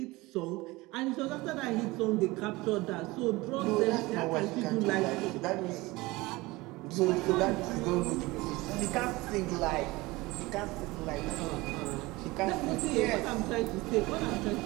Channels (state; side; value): quieter; left; 21.4 dB